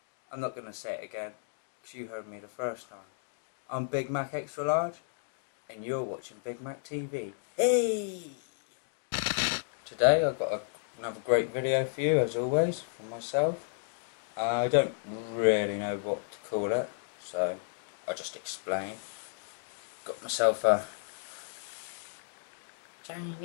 I'm not going to say it again, because you heard me the first time. I'm Big Mac Extra Large, and you're watching BIGmac TV. Hey! Today I've got another great video for you, as always, from myself. I don't really know what to call it, so I'll just explain. Got myself a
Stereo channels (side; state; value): right; silent; digital silence